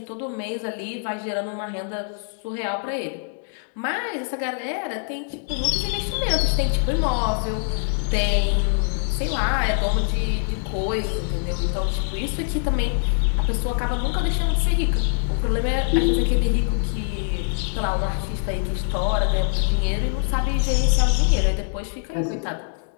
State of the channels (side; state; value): right; silent; 63 dB below the other